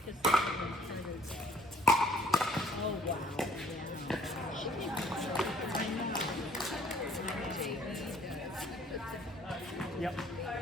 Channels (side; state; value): both; normal; correlation 0.59